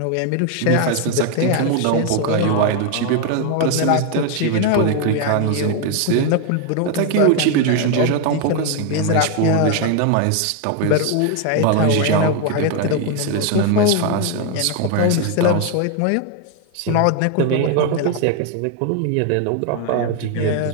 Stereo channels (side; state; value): both; different; correlation 0.01